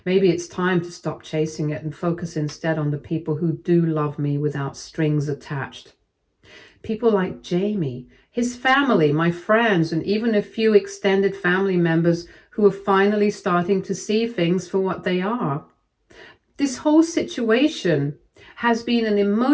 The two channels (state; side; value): identical; both; correlation 1.00